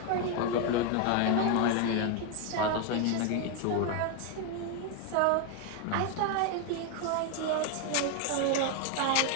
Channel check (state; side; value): different; both; correlation 0.01